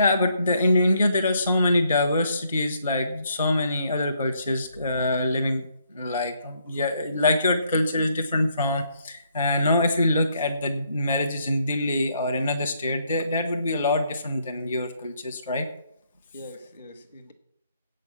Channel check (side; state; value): both; inverted; correlation -0.71